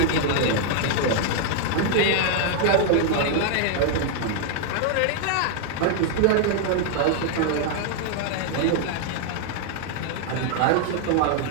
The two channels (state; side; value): different; both; correlation 0.00